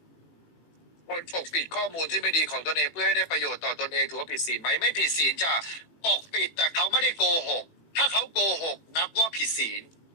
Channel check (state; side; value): late; right; 18 ms